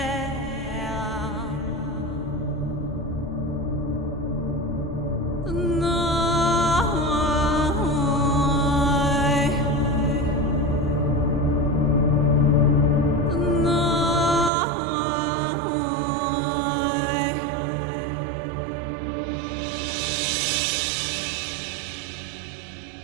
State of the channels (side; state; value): left; drops out; at 14.5 s